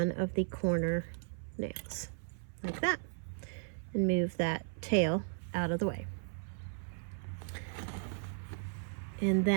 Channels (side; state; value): left; silent; 54 dB below the other